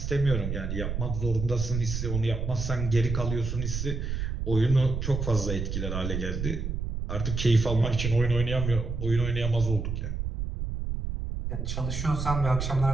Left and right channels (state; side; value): noise; right; rumble, 3 dB below the sound